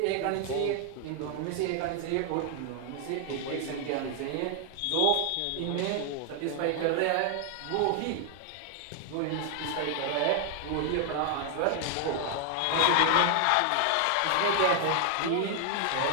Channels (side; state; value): both; different; correlation 0.00